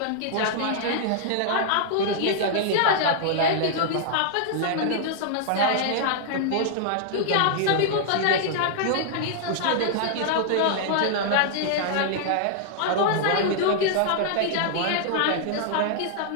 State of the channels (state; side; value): different; both; correlation -0.01